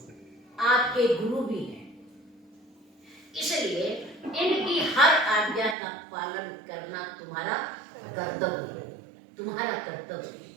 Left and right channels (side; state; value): left; drops out; at 5.8 s